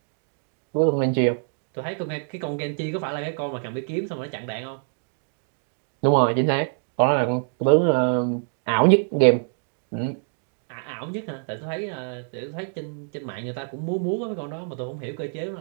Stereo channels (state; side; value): silent; left; digital silence